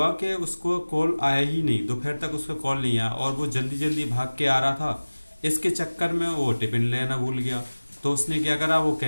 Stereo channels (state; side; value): inverted; both; correlation -1.00